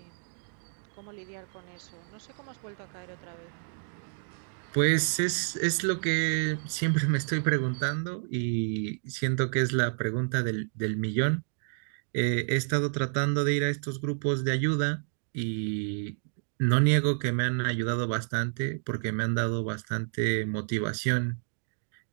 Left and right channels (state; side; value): silent; left; digital silence